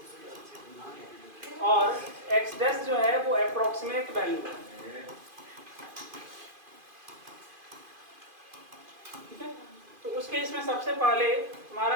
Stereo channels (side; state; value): left; late; 2.5 ms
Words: और x डैश जो है वो अप्रोक्सीमेट वैल्यू है। ठीक है, तो उस केस में सबसे पहले हमारा